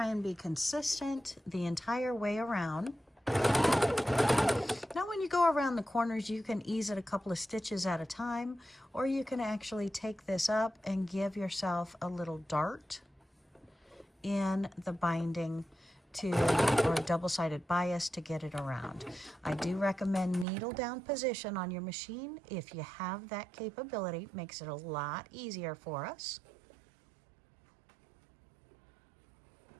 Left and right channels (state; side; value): drops out; left; at 20.5 s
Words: and be consistent the entire way around. Now when you go around the corners, you can ease it a couple of stitches at a time, or you can actually take this up and give yourself a little dart in the binding or a double-sided bias to get it around. I do recommend needle down position on your machine. If you have that capability, it makes it a lot easier for us.